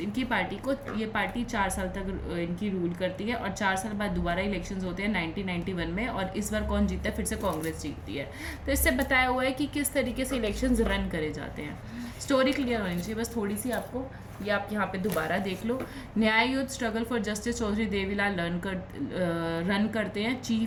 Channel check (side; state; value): both; identical; correlation 1.00